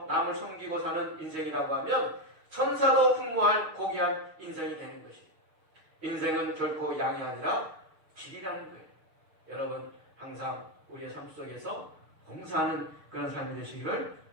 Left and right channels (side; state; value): left; late; 6.6 ms